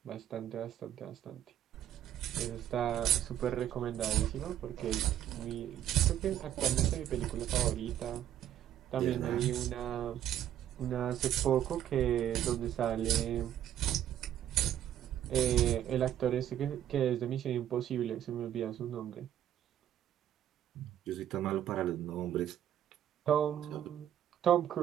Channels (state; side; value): quieter; left; 11.1 dB